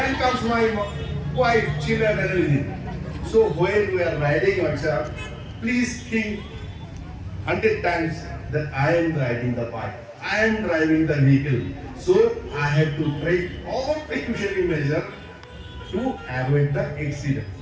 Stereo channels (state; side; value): identical; both; correlation 1.00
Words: comes my wife, children and everything. So when we are riding outside, please think 100 times that I am riding the bike. I am driving the vehicle. So I have to take all precautionary measures to avoid the accident.